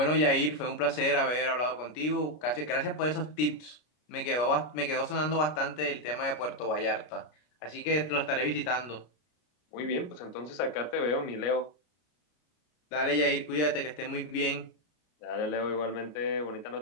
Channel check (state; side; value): late; right; 33 ms